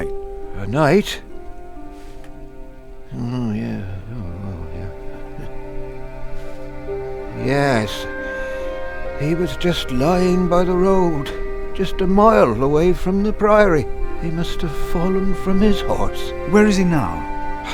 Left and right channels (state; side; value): identical; both; correlation 1.00